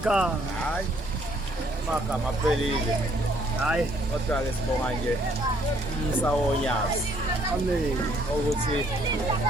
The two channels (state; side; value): normal; both; correlation 0.65